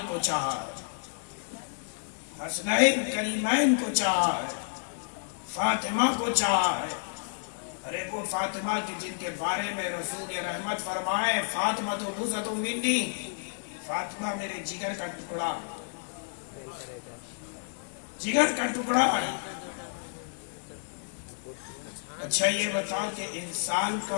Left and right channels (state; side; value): silent; right; digital silence